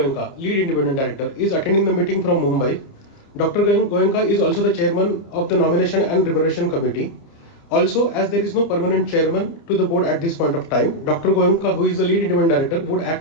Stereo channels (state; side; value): late; right; 30 ms